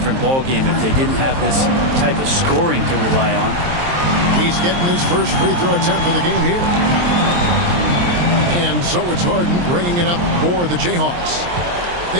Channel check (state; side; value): late; left; 23 ms